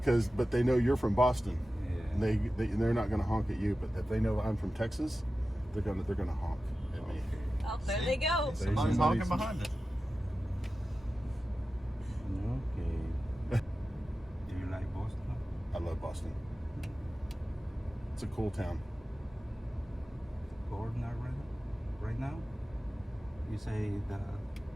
But they know you're from Boston. Yeah. And they're not going to honk at you. But if they know I'm from Texas, they're gonna honk at me. Oh, there they go. Somebody's talking behind us. Okay. Do you like Boston? I love Boston. It's a cool town. Cold now, right now? You say the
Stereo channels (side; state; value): both; normal; correlation 0.94